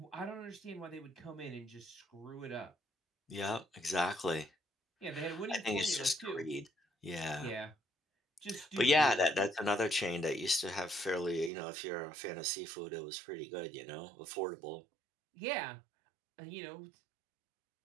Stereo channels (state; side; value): drops out; left; at 11.5 s